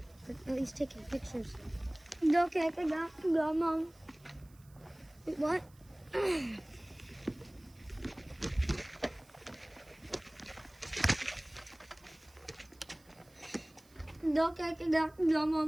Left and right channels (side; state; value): right; noise; hiss, 29 dB below the sound